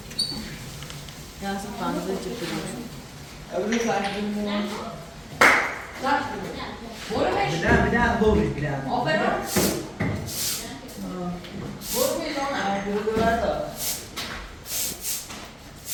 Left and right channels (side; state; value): both; identical; correlation 1.00